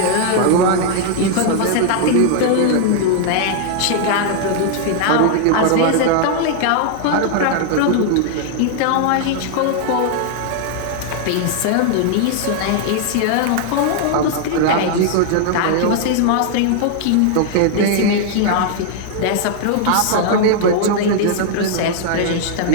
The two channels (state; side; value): different; both; correlation -0.01